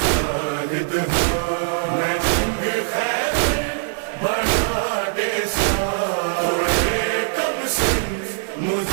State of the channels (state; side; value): silent; left; 65 dB below the other